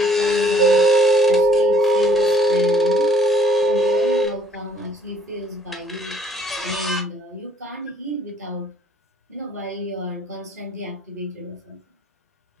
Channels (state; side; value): normal; both; correlation 0.60